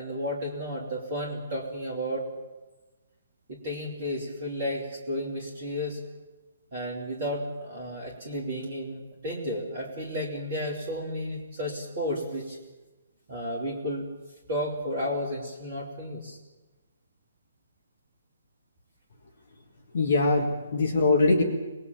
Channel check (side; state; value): both; inverted; correlation -0.58